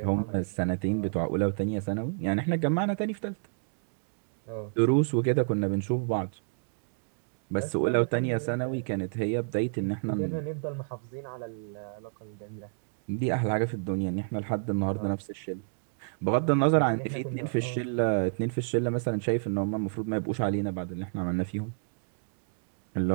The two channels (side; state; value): left; silent; digital silence